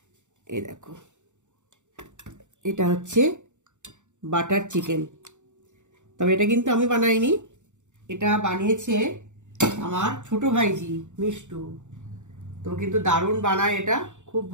এই দেখো, এটা হচ্ছে বাটার চিকেন। তবে এটা কিন্তু আমি বানাইনি, এটা বানিয়েছে আমার ছোট ভাইজি মিষ্টু। তো কিন্তু দারুণ বানায়, এটা খুব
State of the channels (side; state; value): left; late; 0.85 ms